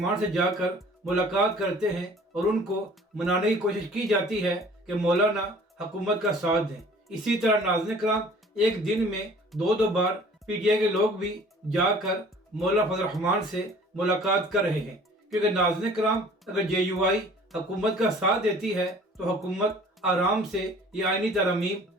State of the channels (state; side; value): normal; both; correlation 0.50